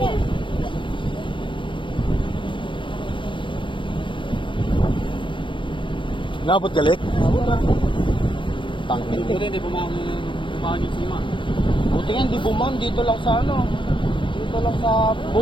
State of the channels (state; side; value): late; right; 0.24 ms